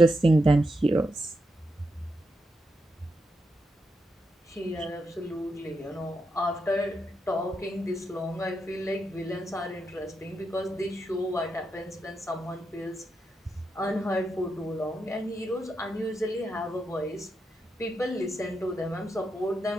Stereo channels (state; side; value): normal; both; correlation 0.84